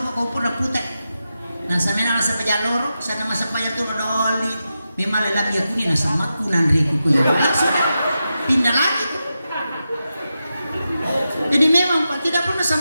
kau pun putek. Nah, sampai nasa pajalor, sana masa pajak tu doli. Memang lelaki aku ni nasa makunan ribu kuya. Langsung pindah lagi. Jadi memang Pak tidak pernah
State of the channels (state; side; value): inverted; both; correlation -0.90